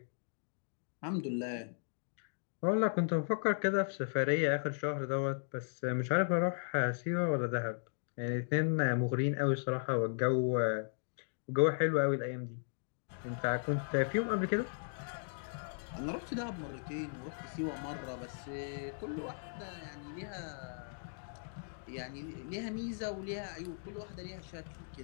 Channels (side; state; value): right; silent; digital silence